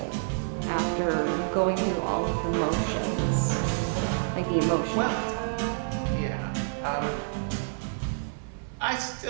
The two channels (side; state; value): left; silent; digital silence